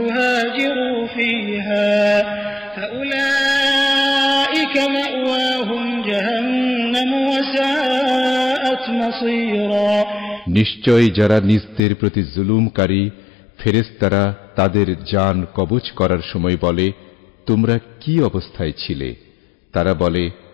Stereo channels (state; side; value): drops out; right; at 11.8 s